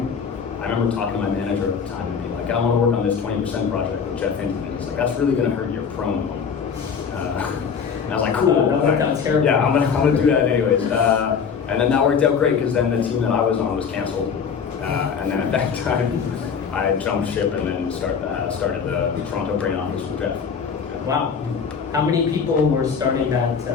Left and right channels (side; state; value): right; quieter; 6.5 dB